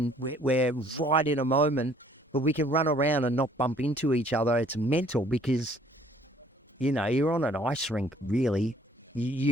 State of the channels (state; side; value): normal; both; correlation 0.59